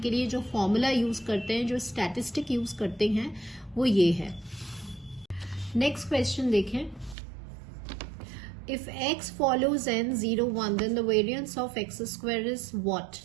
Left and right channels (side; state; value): left; drops out; at 7.2 s